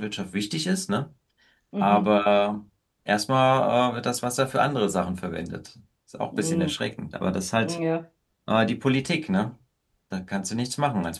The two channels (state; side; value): identical; both; correlation 1.00